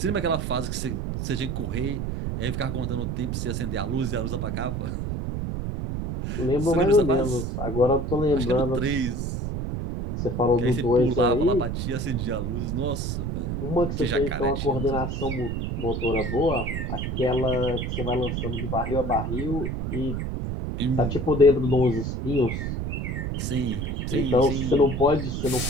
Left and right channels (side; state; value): right; noise; rumble, 2 dB below the sound